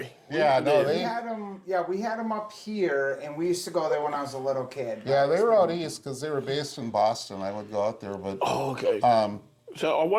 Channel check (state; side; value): identical; both; correlation 1.00